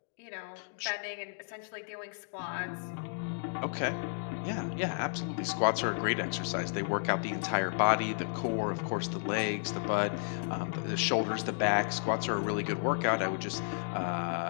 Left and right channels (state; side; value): silent; right; digital silence